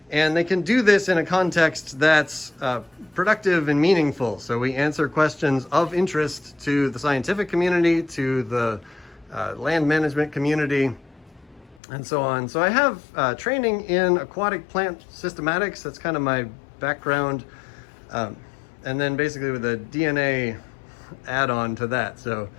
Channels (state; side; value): drops out; right; at 11.8 s